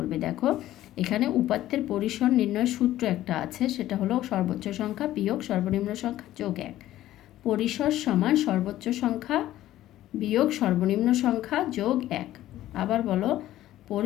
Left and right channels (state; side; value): quieter; right; 14.0 dB